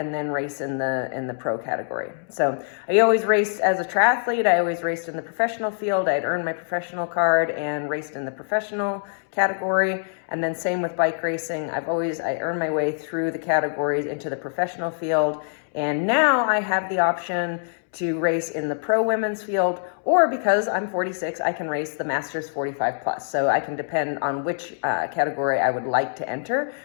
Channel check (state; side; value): silent; right; 62 dB below the other